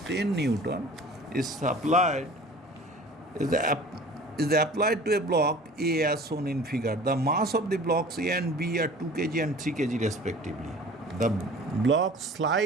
10 Newton is applied to a block A as shown in figure. The mass of the blocks A and B are 2 kg and 3 kg respectively. The blocks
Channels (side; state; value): both; normal; correlation 0.44